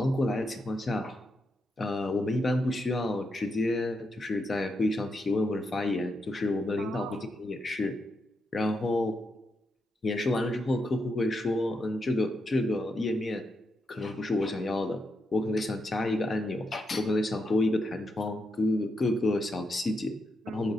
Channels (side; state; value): both; normal; correlation 0.83